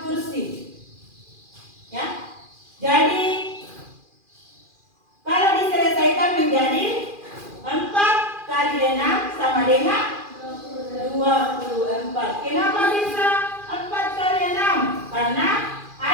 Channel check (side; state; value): left; late; 2.4 ms